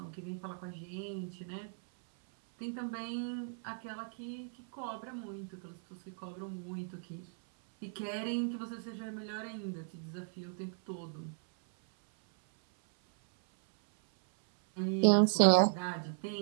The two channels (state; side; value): silent; left; 54 dB below the other